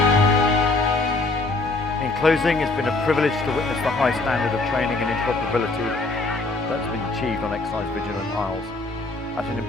In closing, it's been a privilege to witness the high standard of training and interoperability that's been achieved on Exercise Vigilant Isles at an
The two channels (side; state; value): right; quieter; 3.3 dB